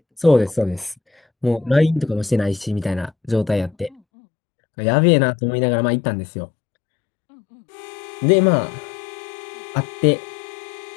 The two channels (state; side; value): drops out; right; at 4.0 s